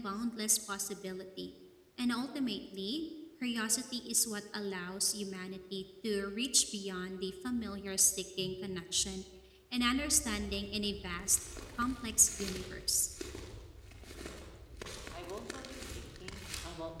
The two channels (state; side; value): identical; both; correlation 1.00